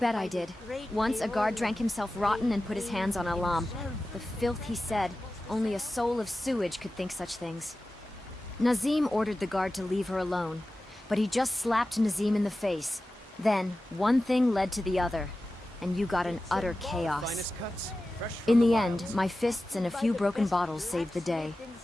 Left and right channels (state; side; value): normal; both; correlation 0.95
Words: I did. Once a guard drank himself rotten and put his hands on Alam. The filth he said, only a soul of sewage could think such things. Nazim ordered the guard to leave her alone, but he just slapped Nazim in the face. Then, one thing led to the other, and you got an utter chaos. In the end, my fists and a few broken bottles saved the day.